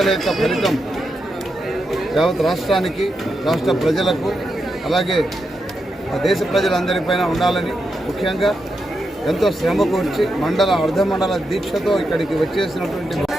యొక్క ఫలితం యావత్ రాష్ట్రానికి, రాష్ట్ర ప్రజలకు, అలాగే దేశ ప్రజలందరిపైన ఉండాలని, ముఖ్యంగా ఎంతో శ్రమ కూర్చి మండల అర్ధమండల దీక్షతో ఇక్కడికి వచ్చేసినటువంటి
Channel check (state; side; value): normal; both; correlation 0.85